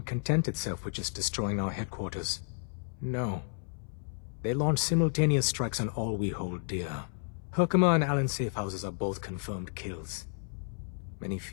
content itself with just destroying our headquarters. No. They launched simultaneous strikes on all we hold dear. Herkimer and Allen's safe houses are both confirmed kills. Many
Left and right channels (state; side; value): silent; right; 56 dB below the other